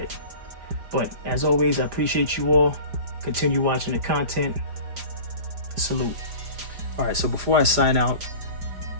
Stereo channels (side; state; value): left; late; 4.9 ms